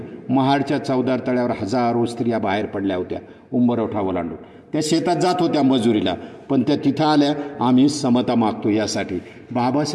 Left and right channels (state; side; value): identical; both; correlation 1.00